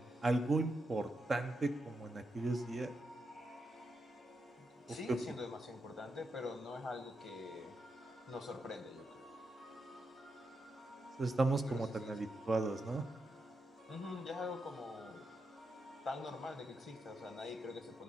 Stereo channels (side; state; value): both; normal; correlation 0.84